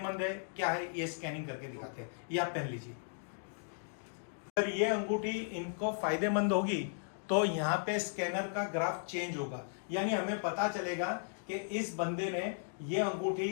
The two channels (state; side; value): silent; right; digital silence